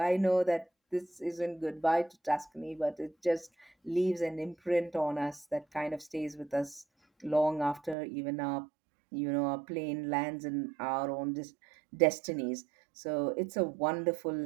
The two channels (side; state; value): left; drops out; at 8.0 s